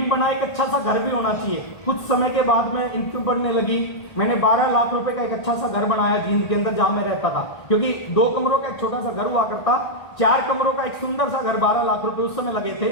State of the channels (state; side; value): late; right; 1.6 ms